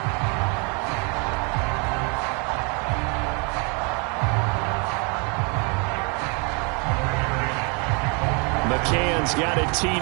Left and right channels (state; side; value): quieter; left; 33.6 dB